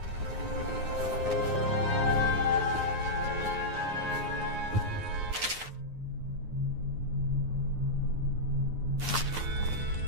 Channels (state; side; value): late; left; 9.6 ms